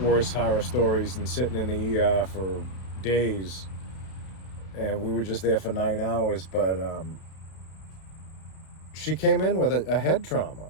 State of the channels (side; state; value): right; late; 32 ms